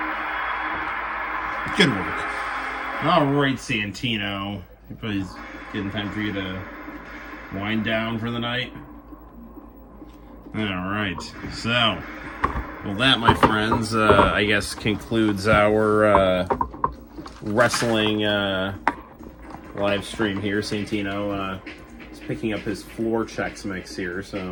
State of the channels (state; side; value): identical; both; correlation 1.00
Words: Good work. All right, Santino. It's getting time for you to wind down for the night. All right. So, well, that, my friends, I guess concludes our wrestling live stream here. Santino is picking up his floor checks mix here.